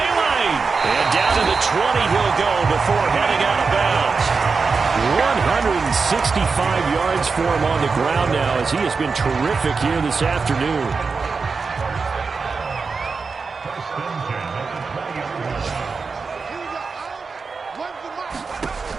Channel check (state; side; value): quieter; left; 4.8 dB